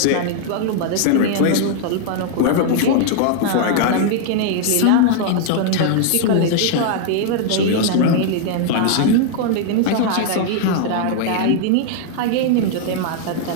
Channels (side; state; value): both; different; correlation -0.01